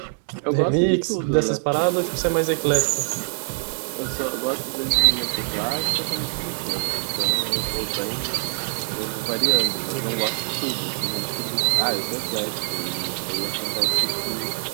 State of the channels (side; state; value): left; silent; digital silence